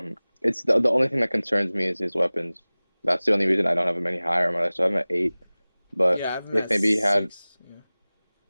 It's the only thing that concerns me is his weapons. That's the only reason I don't have him any higher on my list. So I have him at 8. But Yeah, I have him if at maybe he had 6. Yeah.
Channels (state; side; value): inverted; both; correlation -0.99